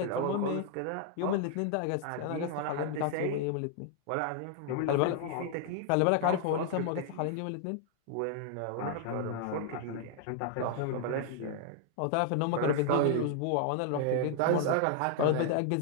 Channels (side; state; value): both; different; correlation 0.00